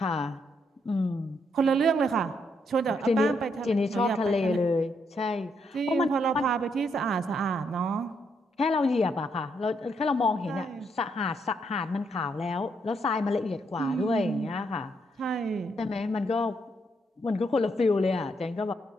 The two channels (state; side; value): normal; both; correlation 0.76